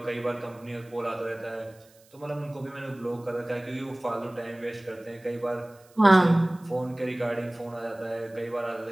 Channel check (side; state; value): right; noise; hiss, 29 dB below the sound